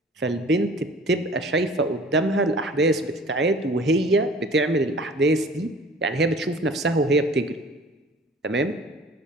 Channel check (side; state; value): both; normal; correlation 0.47